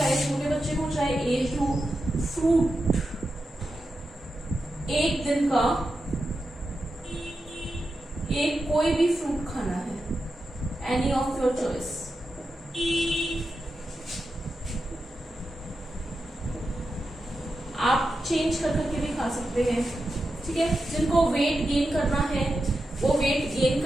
छोटे बच्चे हो, चाहे एज हो, फ्रूट एक दिन का एक कोई भी फ्रूट खाना है, एनी ऑफ योर चॉइस। आप चेंज कर करके भी खा सकते हैं। ठीक है, जिनको वेट गेन करना है वो वेट गेन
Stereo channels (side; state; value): both; normal; correlation 0.90